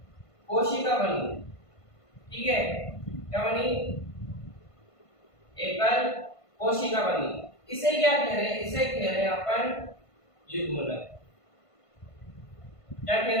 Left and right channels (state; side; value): late; right; 1.5 ms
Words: कोशिका बनी, ठीक है। क्या बनी? एकल कोशिका बनी। इसे क्या कह रहे हैं? इसे कह रहे हैं अपन युग्मनज। क्या कह